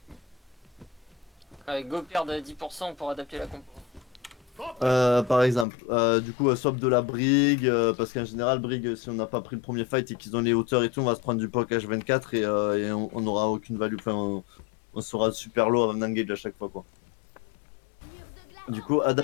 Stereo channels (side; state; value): right; drops out; at 5.7 s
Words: Avec go perdre 10% pour adapter la compo. Par exemple, du coup, swap de la Brig, parce qu'en général, Brig, si on n'a pas pris le premier fight et qu'ils ont les hauteurs et tout, on va se prendre du POC H24 et on n'aura aucune value. Enfin, on sera super low avant d'engage à chaque fois, quoi. Du coup,